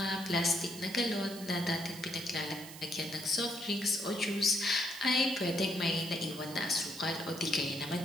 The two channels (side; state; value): right; noise; hiss, 14 dB below the sound